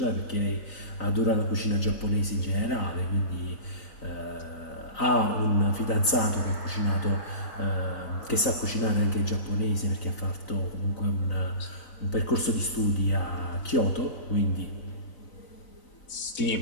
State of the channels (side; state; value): right; late; 3.9 ms